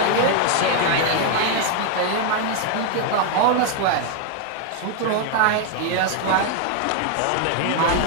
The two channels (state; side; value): different; both; correlation 0.00